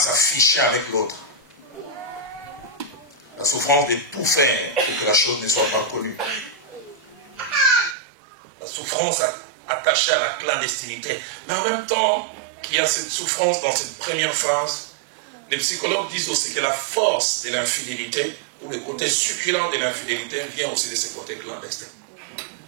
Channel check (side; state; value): left; drops out; at 8.0 s